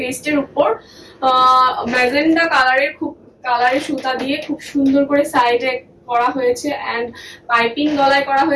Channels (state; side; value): identical; both; correlation 1.00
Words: উপর ম্যাজেন্ডা কালারের সুতা দিয়ে খুব সুন্দর করে সাইডে করা হয়েছে এন্ড পাইপিং গলায় করা